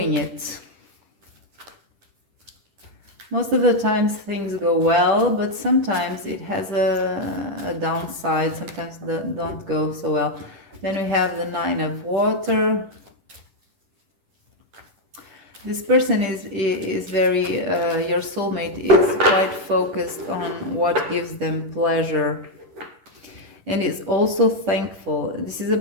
it. Most of the times things go well, but sometimes it has a downside. Sometimes don't go so well. Then we have the Nine of Water. This person is very, your soulmate is quite focused on what gives them pleasure and is also thankful. This is a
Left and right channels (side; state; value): left; late; 10 ms